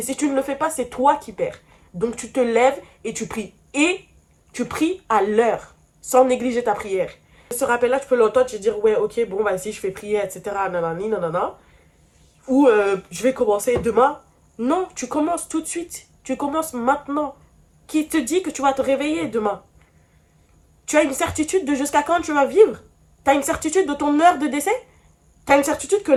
si tu ne le fais pas, c'est toi qui perds. Donc tu te lèves et tu pries. Et tu pries à l'heure, sans négliger ta prière. Ce rappel-là, tu peux l'entendre, tu te dire, ouais, ok, bon, bah si je fais prier, etc., nanani, nanana. Ou je vais commencer demain. Non, tu commences tout de suite. Tu commences maintenant. Qui te dit que tu vas te réveiller demain? Tu as une certitude de jusqu'à quand tu vas vivre? Tu as une certitude de ton heure de décès? Tu as une certitude que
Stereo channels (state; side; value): identical; both; correlation 1.00